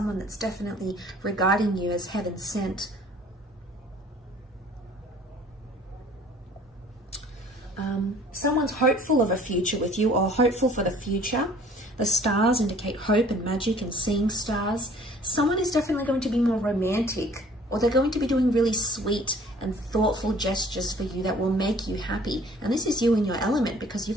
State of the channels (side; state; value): both; normal; correlation 0.53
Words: that's definitely regarding you as heaven sent. Someone's hopeful of a future with you, or hopeful for the future. The stars indicate hope and magic and seeing stars. Someone is definitely going to be more romantic, or they're going to be doing really sweet and thoughtful gestures for you that will make you happy. And this is you in your element, because